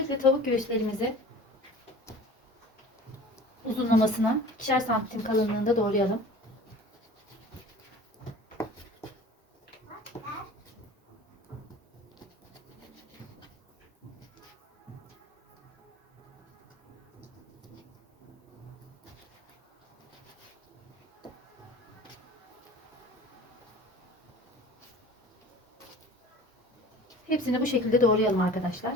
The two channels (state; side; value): normal; both; correlation 0.42